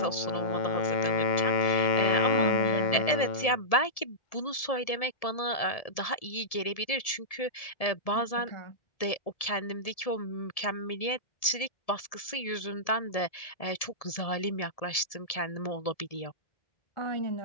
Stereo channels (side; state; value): right; late; 1.7 ms